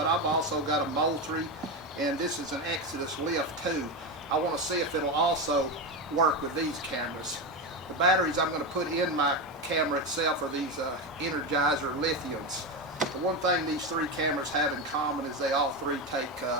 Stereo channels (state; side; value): normal; both; correlation 0.15